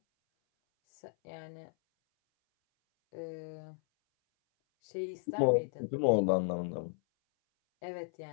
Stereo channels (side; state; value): right; silent; 55 dB below the other